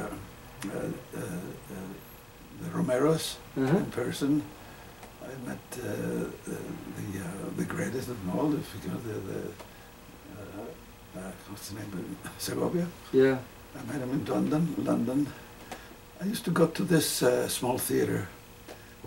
Romeros in person. I met the greatest of them all. If you know what's the name? Segovia. Yeah. I met him in London. I used to go to this small theater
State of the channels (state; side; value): noise; left; hum, 26 dB below the sound